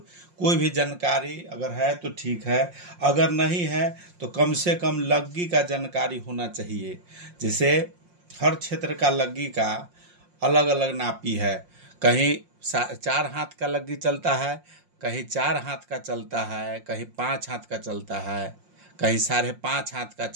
कोई भी जानकारी अगर है तो ठीक है, अगर नहीं है तो कम से कम लग्गी का जानकारी होना चाहिए। जैसे हर क्षेत्र का लग्गी का अलग अलग नापी है। कहीं 4 हाथ का लग्गी चलता है, कहीं 4 हाथ का चलता है, कहीं 5 हाथ का चलता है, कहीं 5.5 हाथ का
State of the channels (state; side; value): late; left; 5.6 ms